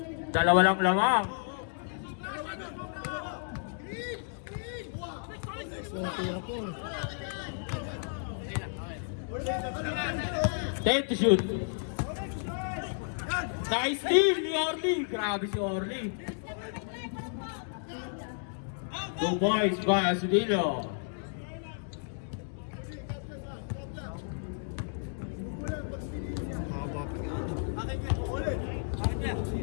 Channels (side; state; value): right; silent; digital silence